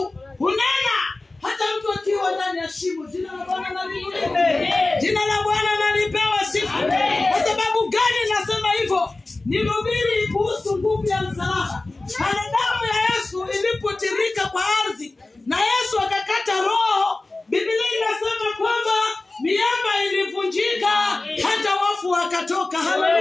hunena hata mtu akiwa ndani ya shimo. Jina la Bwana na liinuliwe. Jina la Bwana na lipewe sifa. Kwa sababu gani nasema hivyo? Nihubiri kuhusu nguvu ya msalaba. Pale damu ya Yesu ilipotirika kwa ardhi na Yesu akakata roho, Biblia inasema kwamba miamba ilivunjika, hata wafu wakatoka.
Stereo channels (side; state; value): right; quieter; 3.1 dB